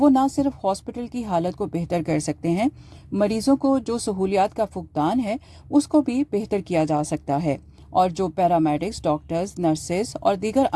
نہ صرف ہاسپٹل کی حالت کو بہتر کر سکتے ہیں, مریضوں کو جو سہولیات کا فقدان ہے اس کو بھی بہتر کیا جا سکتا ہے, اور جو پیرامیڈکس, ڈاکٹرز, نرسز اور دیگر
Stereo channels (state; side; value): identical; both; correlation 1.00